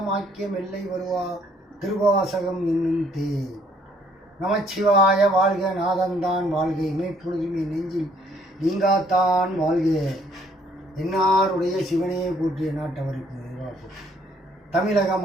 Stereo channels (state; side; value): normal; both; correlation 0.65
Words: மெல்லை வருவா திருவாசகம் என்னும் தே நமச்சிவாய வாழ்க நாதந்தான் வாழ்க இமைப்பொழுதுமே நெஞ்சில் நீங்காத்தான் வாழ்க என்னாருடைய சிவனே போற்றிய நாட்டவருக்கு தமிழக